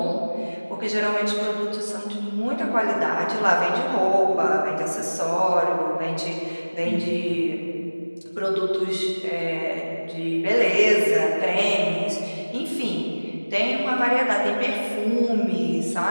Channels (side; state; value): both; inverted; correlation -1.00